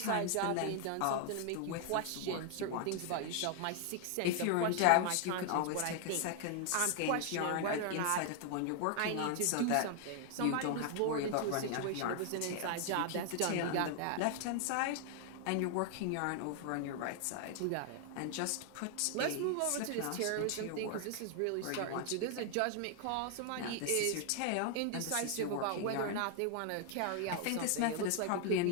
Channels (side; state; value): both; different; correlation 0.00